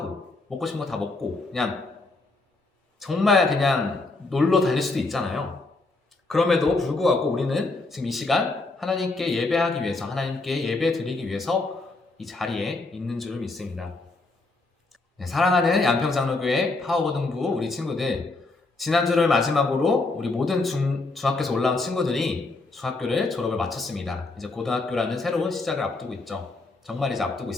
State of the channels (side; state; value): right; quieter; 3.4 dB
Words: 먹고 싶은 거 다 먹고 정말 그냥 놀러 다닐 수도 있잖아요. 그럼에도 불구하고 우리는 지금 이 시간 하나님께 예배하기 위해서, 하나님께 예배 드리기 위해서 이 자리에 있는 줄을 믿습니다. 네, 사랑하는 양평장로교회 파워고등부 우리 친구들, 지난주를 마지막으로 우리 모든 중학교에서 올라온 친구들이 중학교를 졸업을 마쳤습니다. 이제 고등학교라는 새로운 시작을 앞두고 있죠. 정말 이제 앞두고